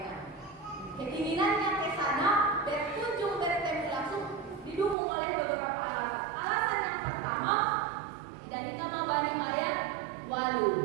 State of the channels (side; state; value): left; drops out; at 5.0 s